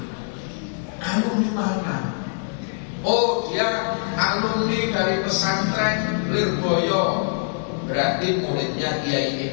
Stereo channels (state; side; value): silent; right; digital silence